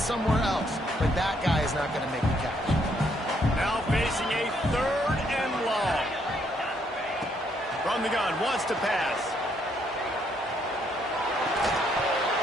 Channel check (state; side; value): normal; both; correlation 0.71